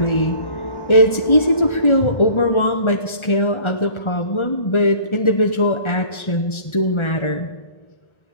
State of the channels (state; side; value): late; right; 1.4 ms